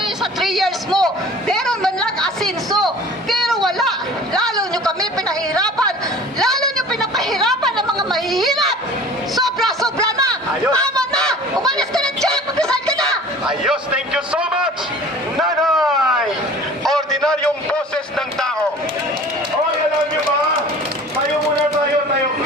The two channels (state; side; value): normal; both; correlation 0.44